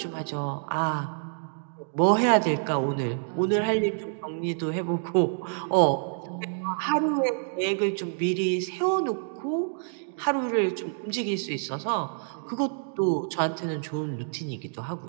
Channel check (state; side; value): silent; left; digital silence